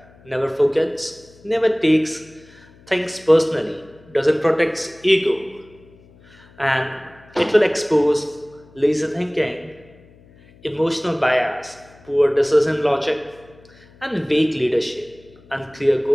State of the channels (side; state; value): left; noise; hum, 26 dB below the sound